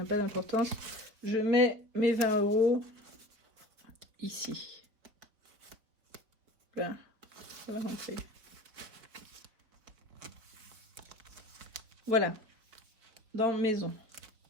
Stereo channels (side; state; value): left; late; 4.5 ms